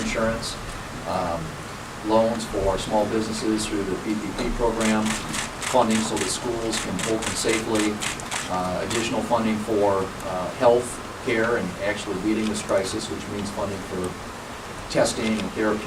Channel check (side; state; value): both; identical; correlation 1.00